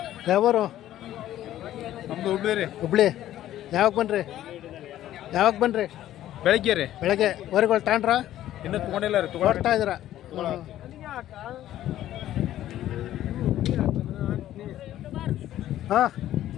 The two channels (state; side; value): quieter; right; 12.9 dB